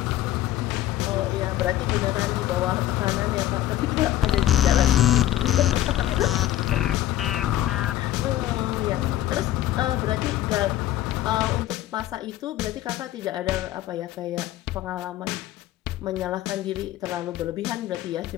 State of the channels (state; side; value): quieter; right; 13.4 dB